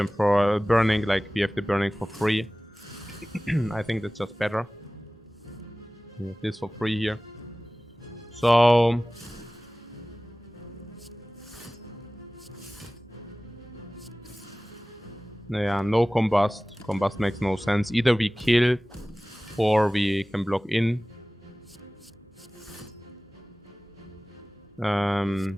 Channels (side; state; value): both; normal; correlation 0.98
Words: for burning, like we have the burning for free. I think that's just better. We have this for free here. So yeah, no combust. Combust makes no sense. Either we kill or we can block in.